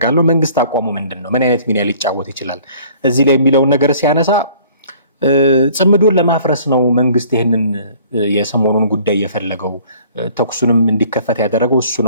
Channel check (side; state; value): both; inverted; correlation -0.54